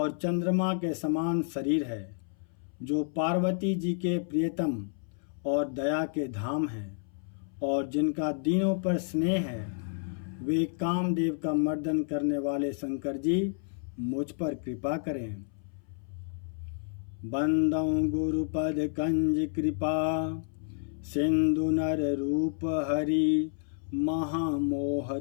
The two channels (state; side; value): silent; right; 58 dB below the other